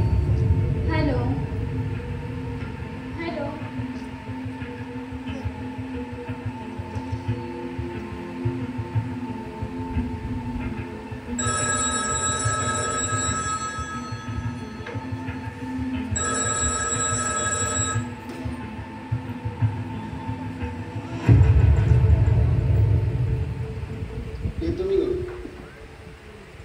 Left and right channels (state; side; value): identical; both; correlation 1.00